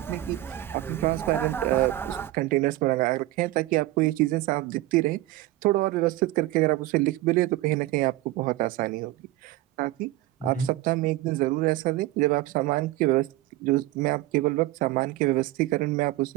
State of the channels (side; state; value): left; quieter; 16.8 dB